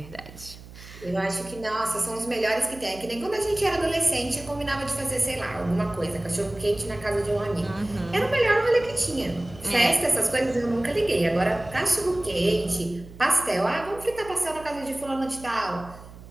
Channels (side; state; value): right; noise; hum, 18 dB below the sound